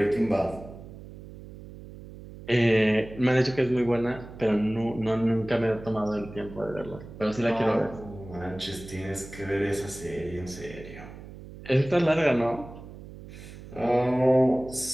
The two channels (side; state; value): right; noise; hum, 15 dB below the sound